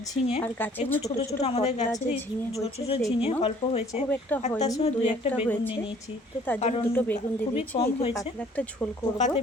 ঝিঙে, এগুলো ছোট ছোট আমাদের গাছে ছোট ছোট ঝিঙে অল্প হয়েছে। আর তার সঙ্গে দুই একটা বেগুন নিয়ে নিয়েছি, কারণ খুবই কম হয়েছে, পোকাতে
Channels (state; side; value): normal; both; correlation 0.56